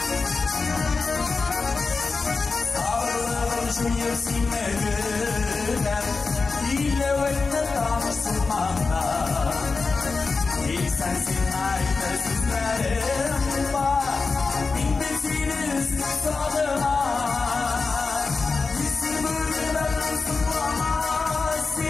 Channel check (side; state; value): right; quieter; 4.3 dB